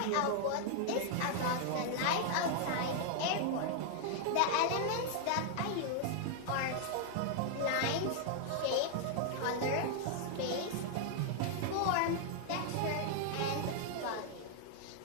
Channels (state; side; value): different; both; correlation 0.00